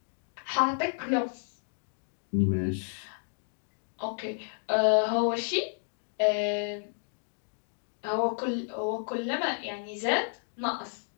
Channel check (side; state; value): right; silent; digital silence